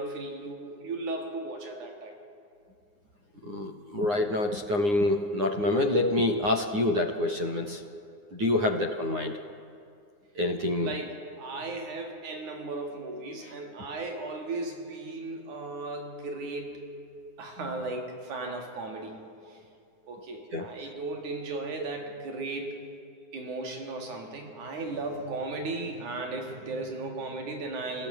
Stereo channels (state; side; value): late; left; 9.7 ms